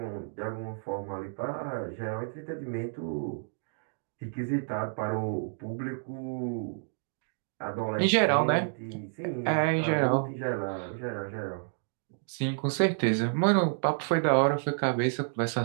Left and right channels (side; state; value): left; silent; digital silence